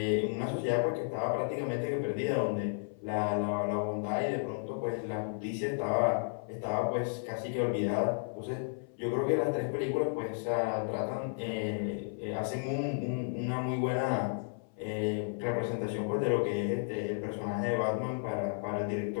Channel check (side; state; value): right; silent; 56 dB below the other